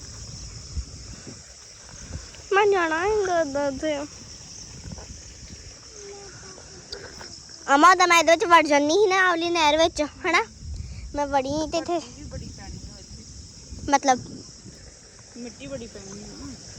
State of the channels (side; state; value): both; identical; correlation 1.00